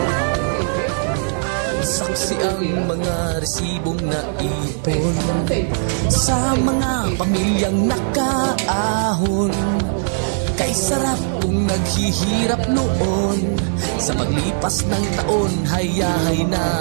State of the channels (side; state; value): left; silent; digital silence